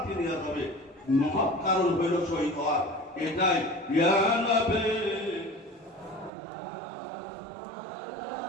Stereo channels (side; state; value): left; drops out; at 6.3 s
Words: নিয়ে যাবে। মহৎ কারণ হইল শহীদ হওয়ার। এটাই ইয়া নবী